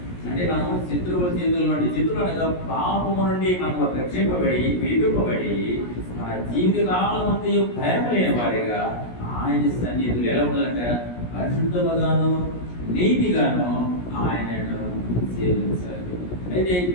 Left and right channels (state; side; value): late; right; 17 ms